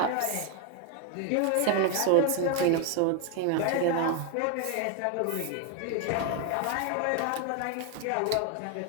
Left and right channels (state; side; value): different; both; correlation 0.01